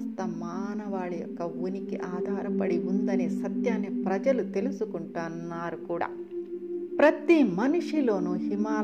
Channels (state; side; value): identical; both; correlation 1.00